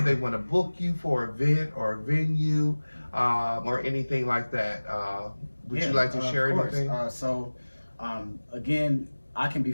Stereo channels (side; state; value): both; inverted; correlation -1.00